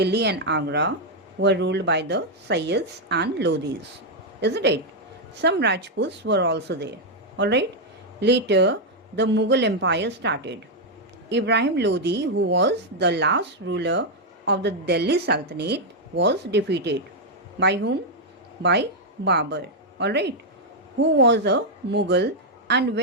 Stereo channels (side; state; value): both; normal; correlation -0.01